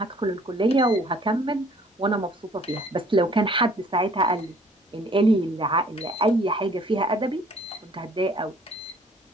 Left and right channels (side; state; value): both; normal; correlation 0.57